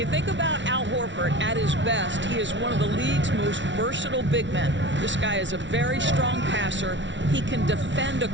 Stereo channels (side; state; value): left; late; 0.54 ms